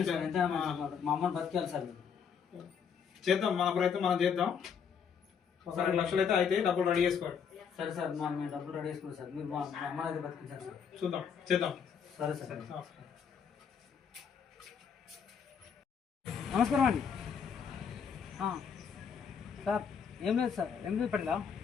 సార్, ఎంతైనా మంచిది. మా అమ్మని బతికేయాలి సార్. చేద్దాం, మన ప్రయత్నం మనం చేద్దాం. ఒకసారి 2 లక్షలు అయితే డబ్బులు రెడీ చేసుకోండి. సరే సార్, మేము డబ్బులు రెడీ చేసుకున్నాం సార్. మీరు మా అమ్మని అయితే బతికించారు సార్. చూద్దాం, చేద్దాం. సరే సార్. నమస్కారం అండి సార్. ఏం లేదు సార్, ఏం లేదు పడేలా.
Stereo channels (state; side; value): quieter; right; 6.9 dB